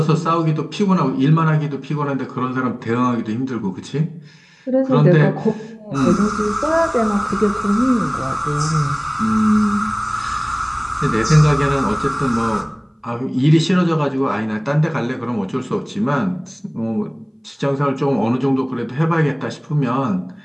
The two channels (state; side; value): identical; both; correlation 1.00